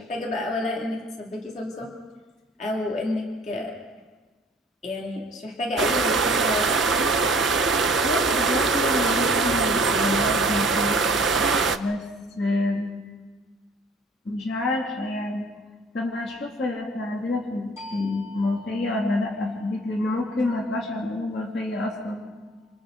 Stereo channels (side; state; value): both; normal; correlation 0.52